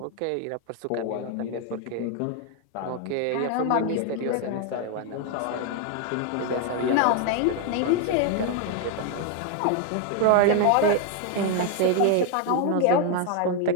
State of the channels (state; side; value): different; both; correlation 0.01